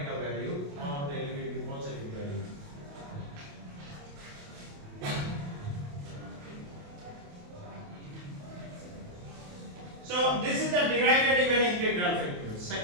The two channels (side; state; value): left; late; 28 ms